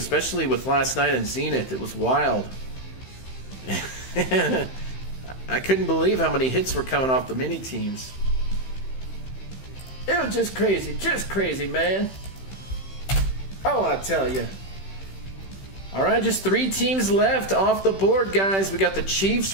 with last night in Zenith. It was wild. I couldn't believe how many hits were coming off the mini teams. It was just crazy, man. Oh, I tell you. All right, just 3 teams left off the board, guys. We got the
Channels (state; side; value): late; right; 15 ms